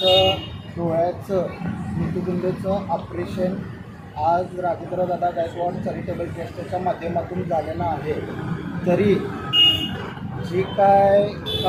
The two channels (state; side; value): identical; both; correlation 1.00